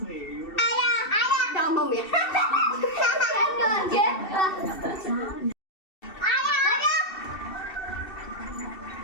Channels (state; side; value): late; right; 2.7 ms